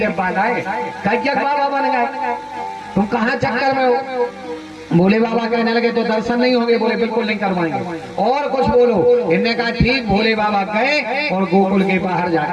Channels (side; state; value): both; identical; correlation 1.00